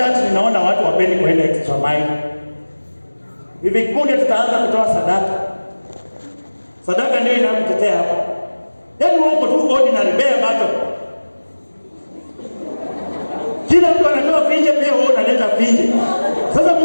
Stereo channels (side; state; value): both; inverted; correlation -1.00